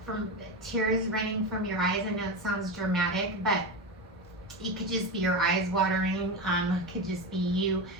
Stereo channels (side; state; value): both; normal; correlation 0.19